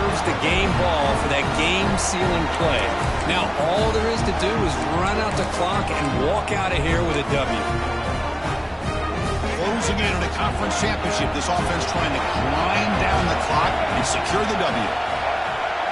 the game ball for that game-sealing play. Now, all there is to do is run out the clock and walk out of here with a W. Closing in on a conference championship, this offense trying to grind down the clock and secure the W.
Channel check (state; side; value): identical; both; correlation 1.00